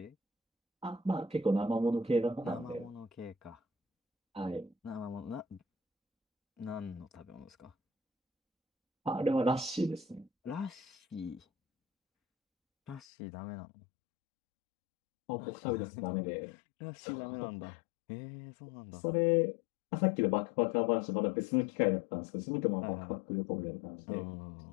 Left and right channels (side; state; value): right; drops out; at 13.0 s